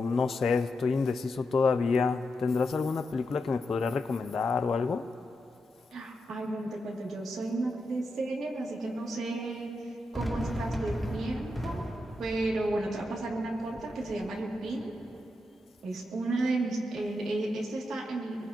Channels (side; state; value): both; normal; correlation 0.86